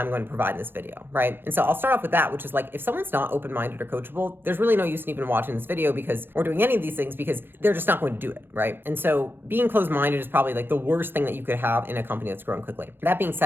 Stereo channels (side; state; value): left; late; 0.10 ms